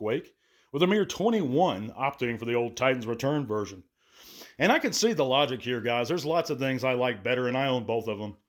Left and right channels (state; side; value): identical; both; correlation 1.00